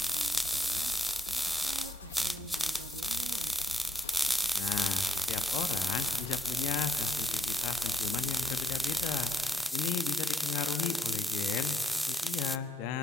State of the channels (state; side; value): normal; both; correlation 0.76